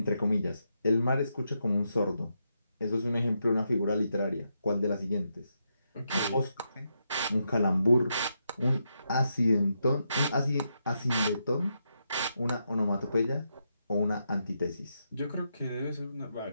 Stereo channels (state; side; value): inverted; both; correlation -0.83